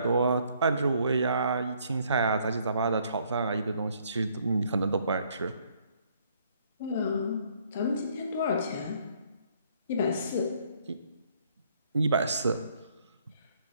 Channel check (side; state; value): both; inverted; correlation -0.66